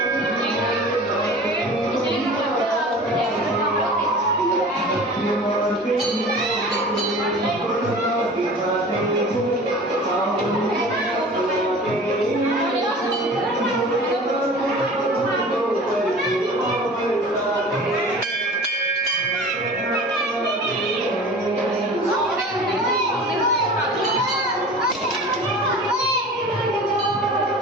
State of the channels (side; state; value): both; normal; correlation 0.40